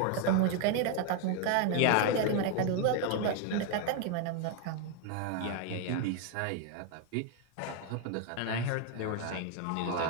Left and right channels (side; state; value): both; different; correlation 0.01